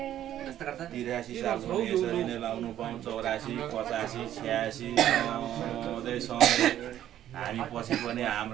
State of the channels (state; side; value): quieter; left; 11.7 dB